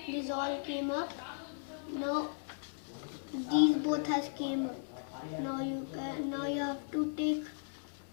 up. Now these both has came up. Now you have to take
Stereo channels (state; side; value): silent; right; 53 dB below the other